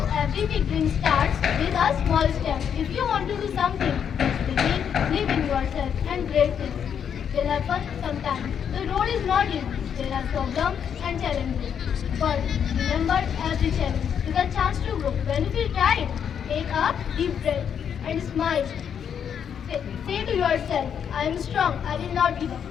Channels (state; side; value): quieter; right; 8.0 dB